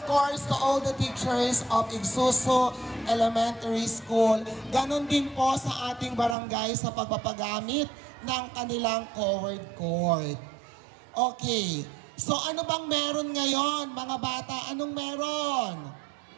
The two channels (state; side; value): drops out; left; at 6.4 s